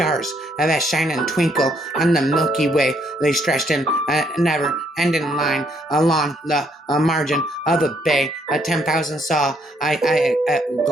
that shine and twinkle on the Milky Way. They stretched in a never-ending line along the margin of a bay. 10,000 saw I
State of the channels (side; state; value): both; normal; correlation 0.70